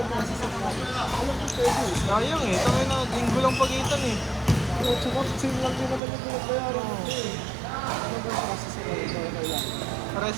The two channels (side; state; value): left; drops out; at 6.0 s